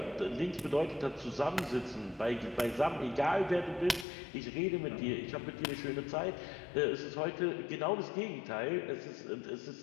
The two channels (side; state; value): right; drops out; at 4.0 s